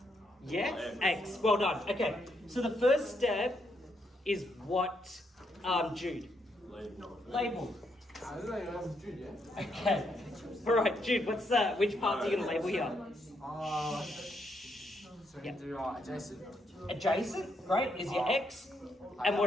Yeah? X. Well done. Okay, so the first step is what, Jude? Label. Okay. All right, Jude, what's that? Which parts are you going to label here? So we can do adjacent. Adjacent, great, is your X. And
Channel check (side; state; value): both; normal; correlation 0.77